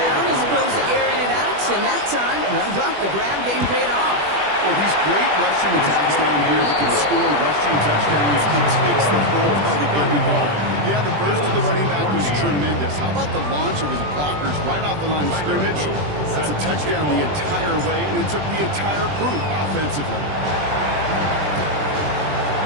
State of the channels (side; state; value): left; late; 20 ms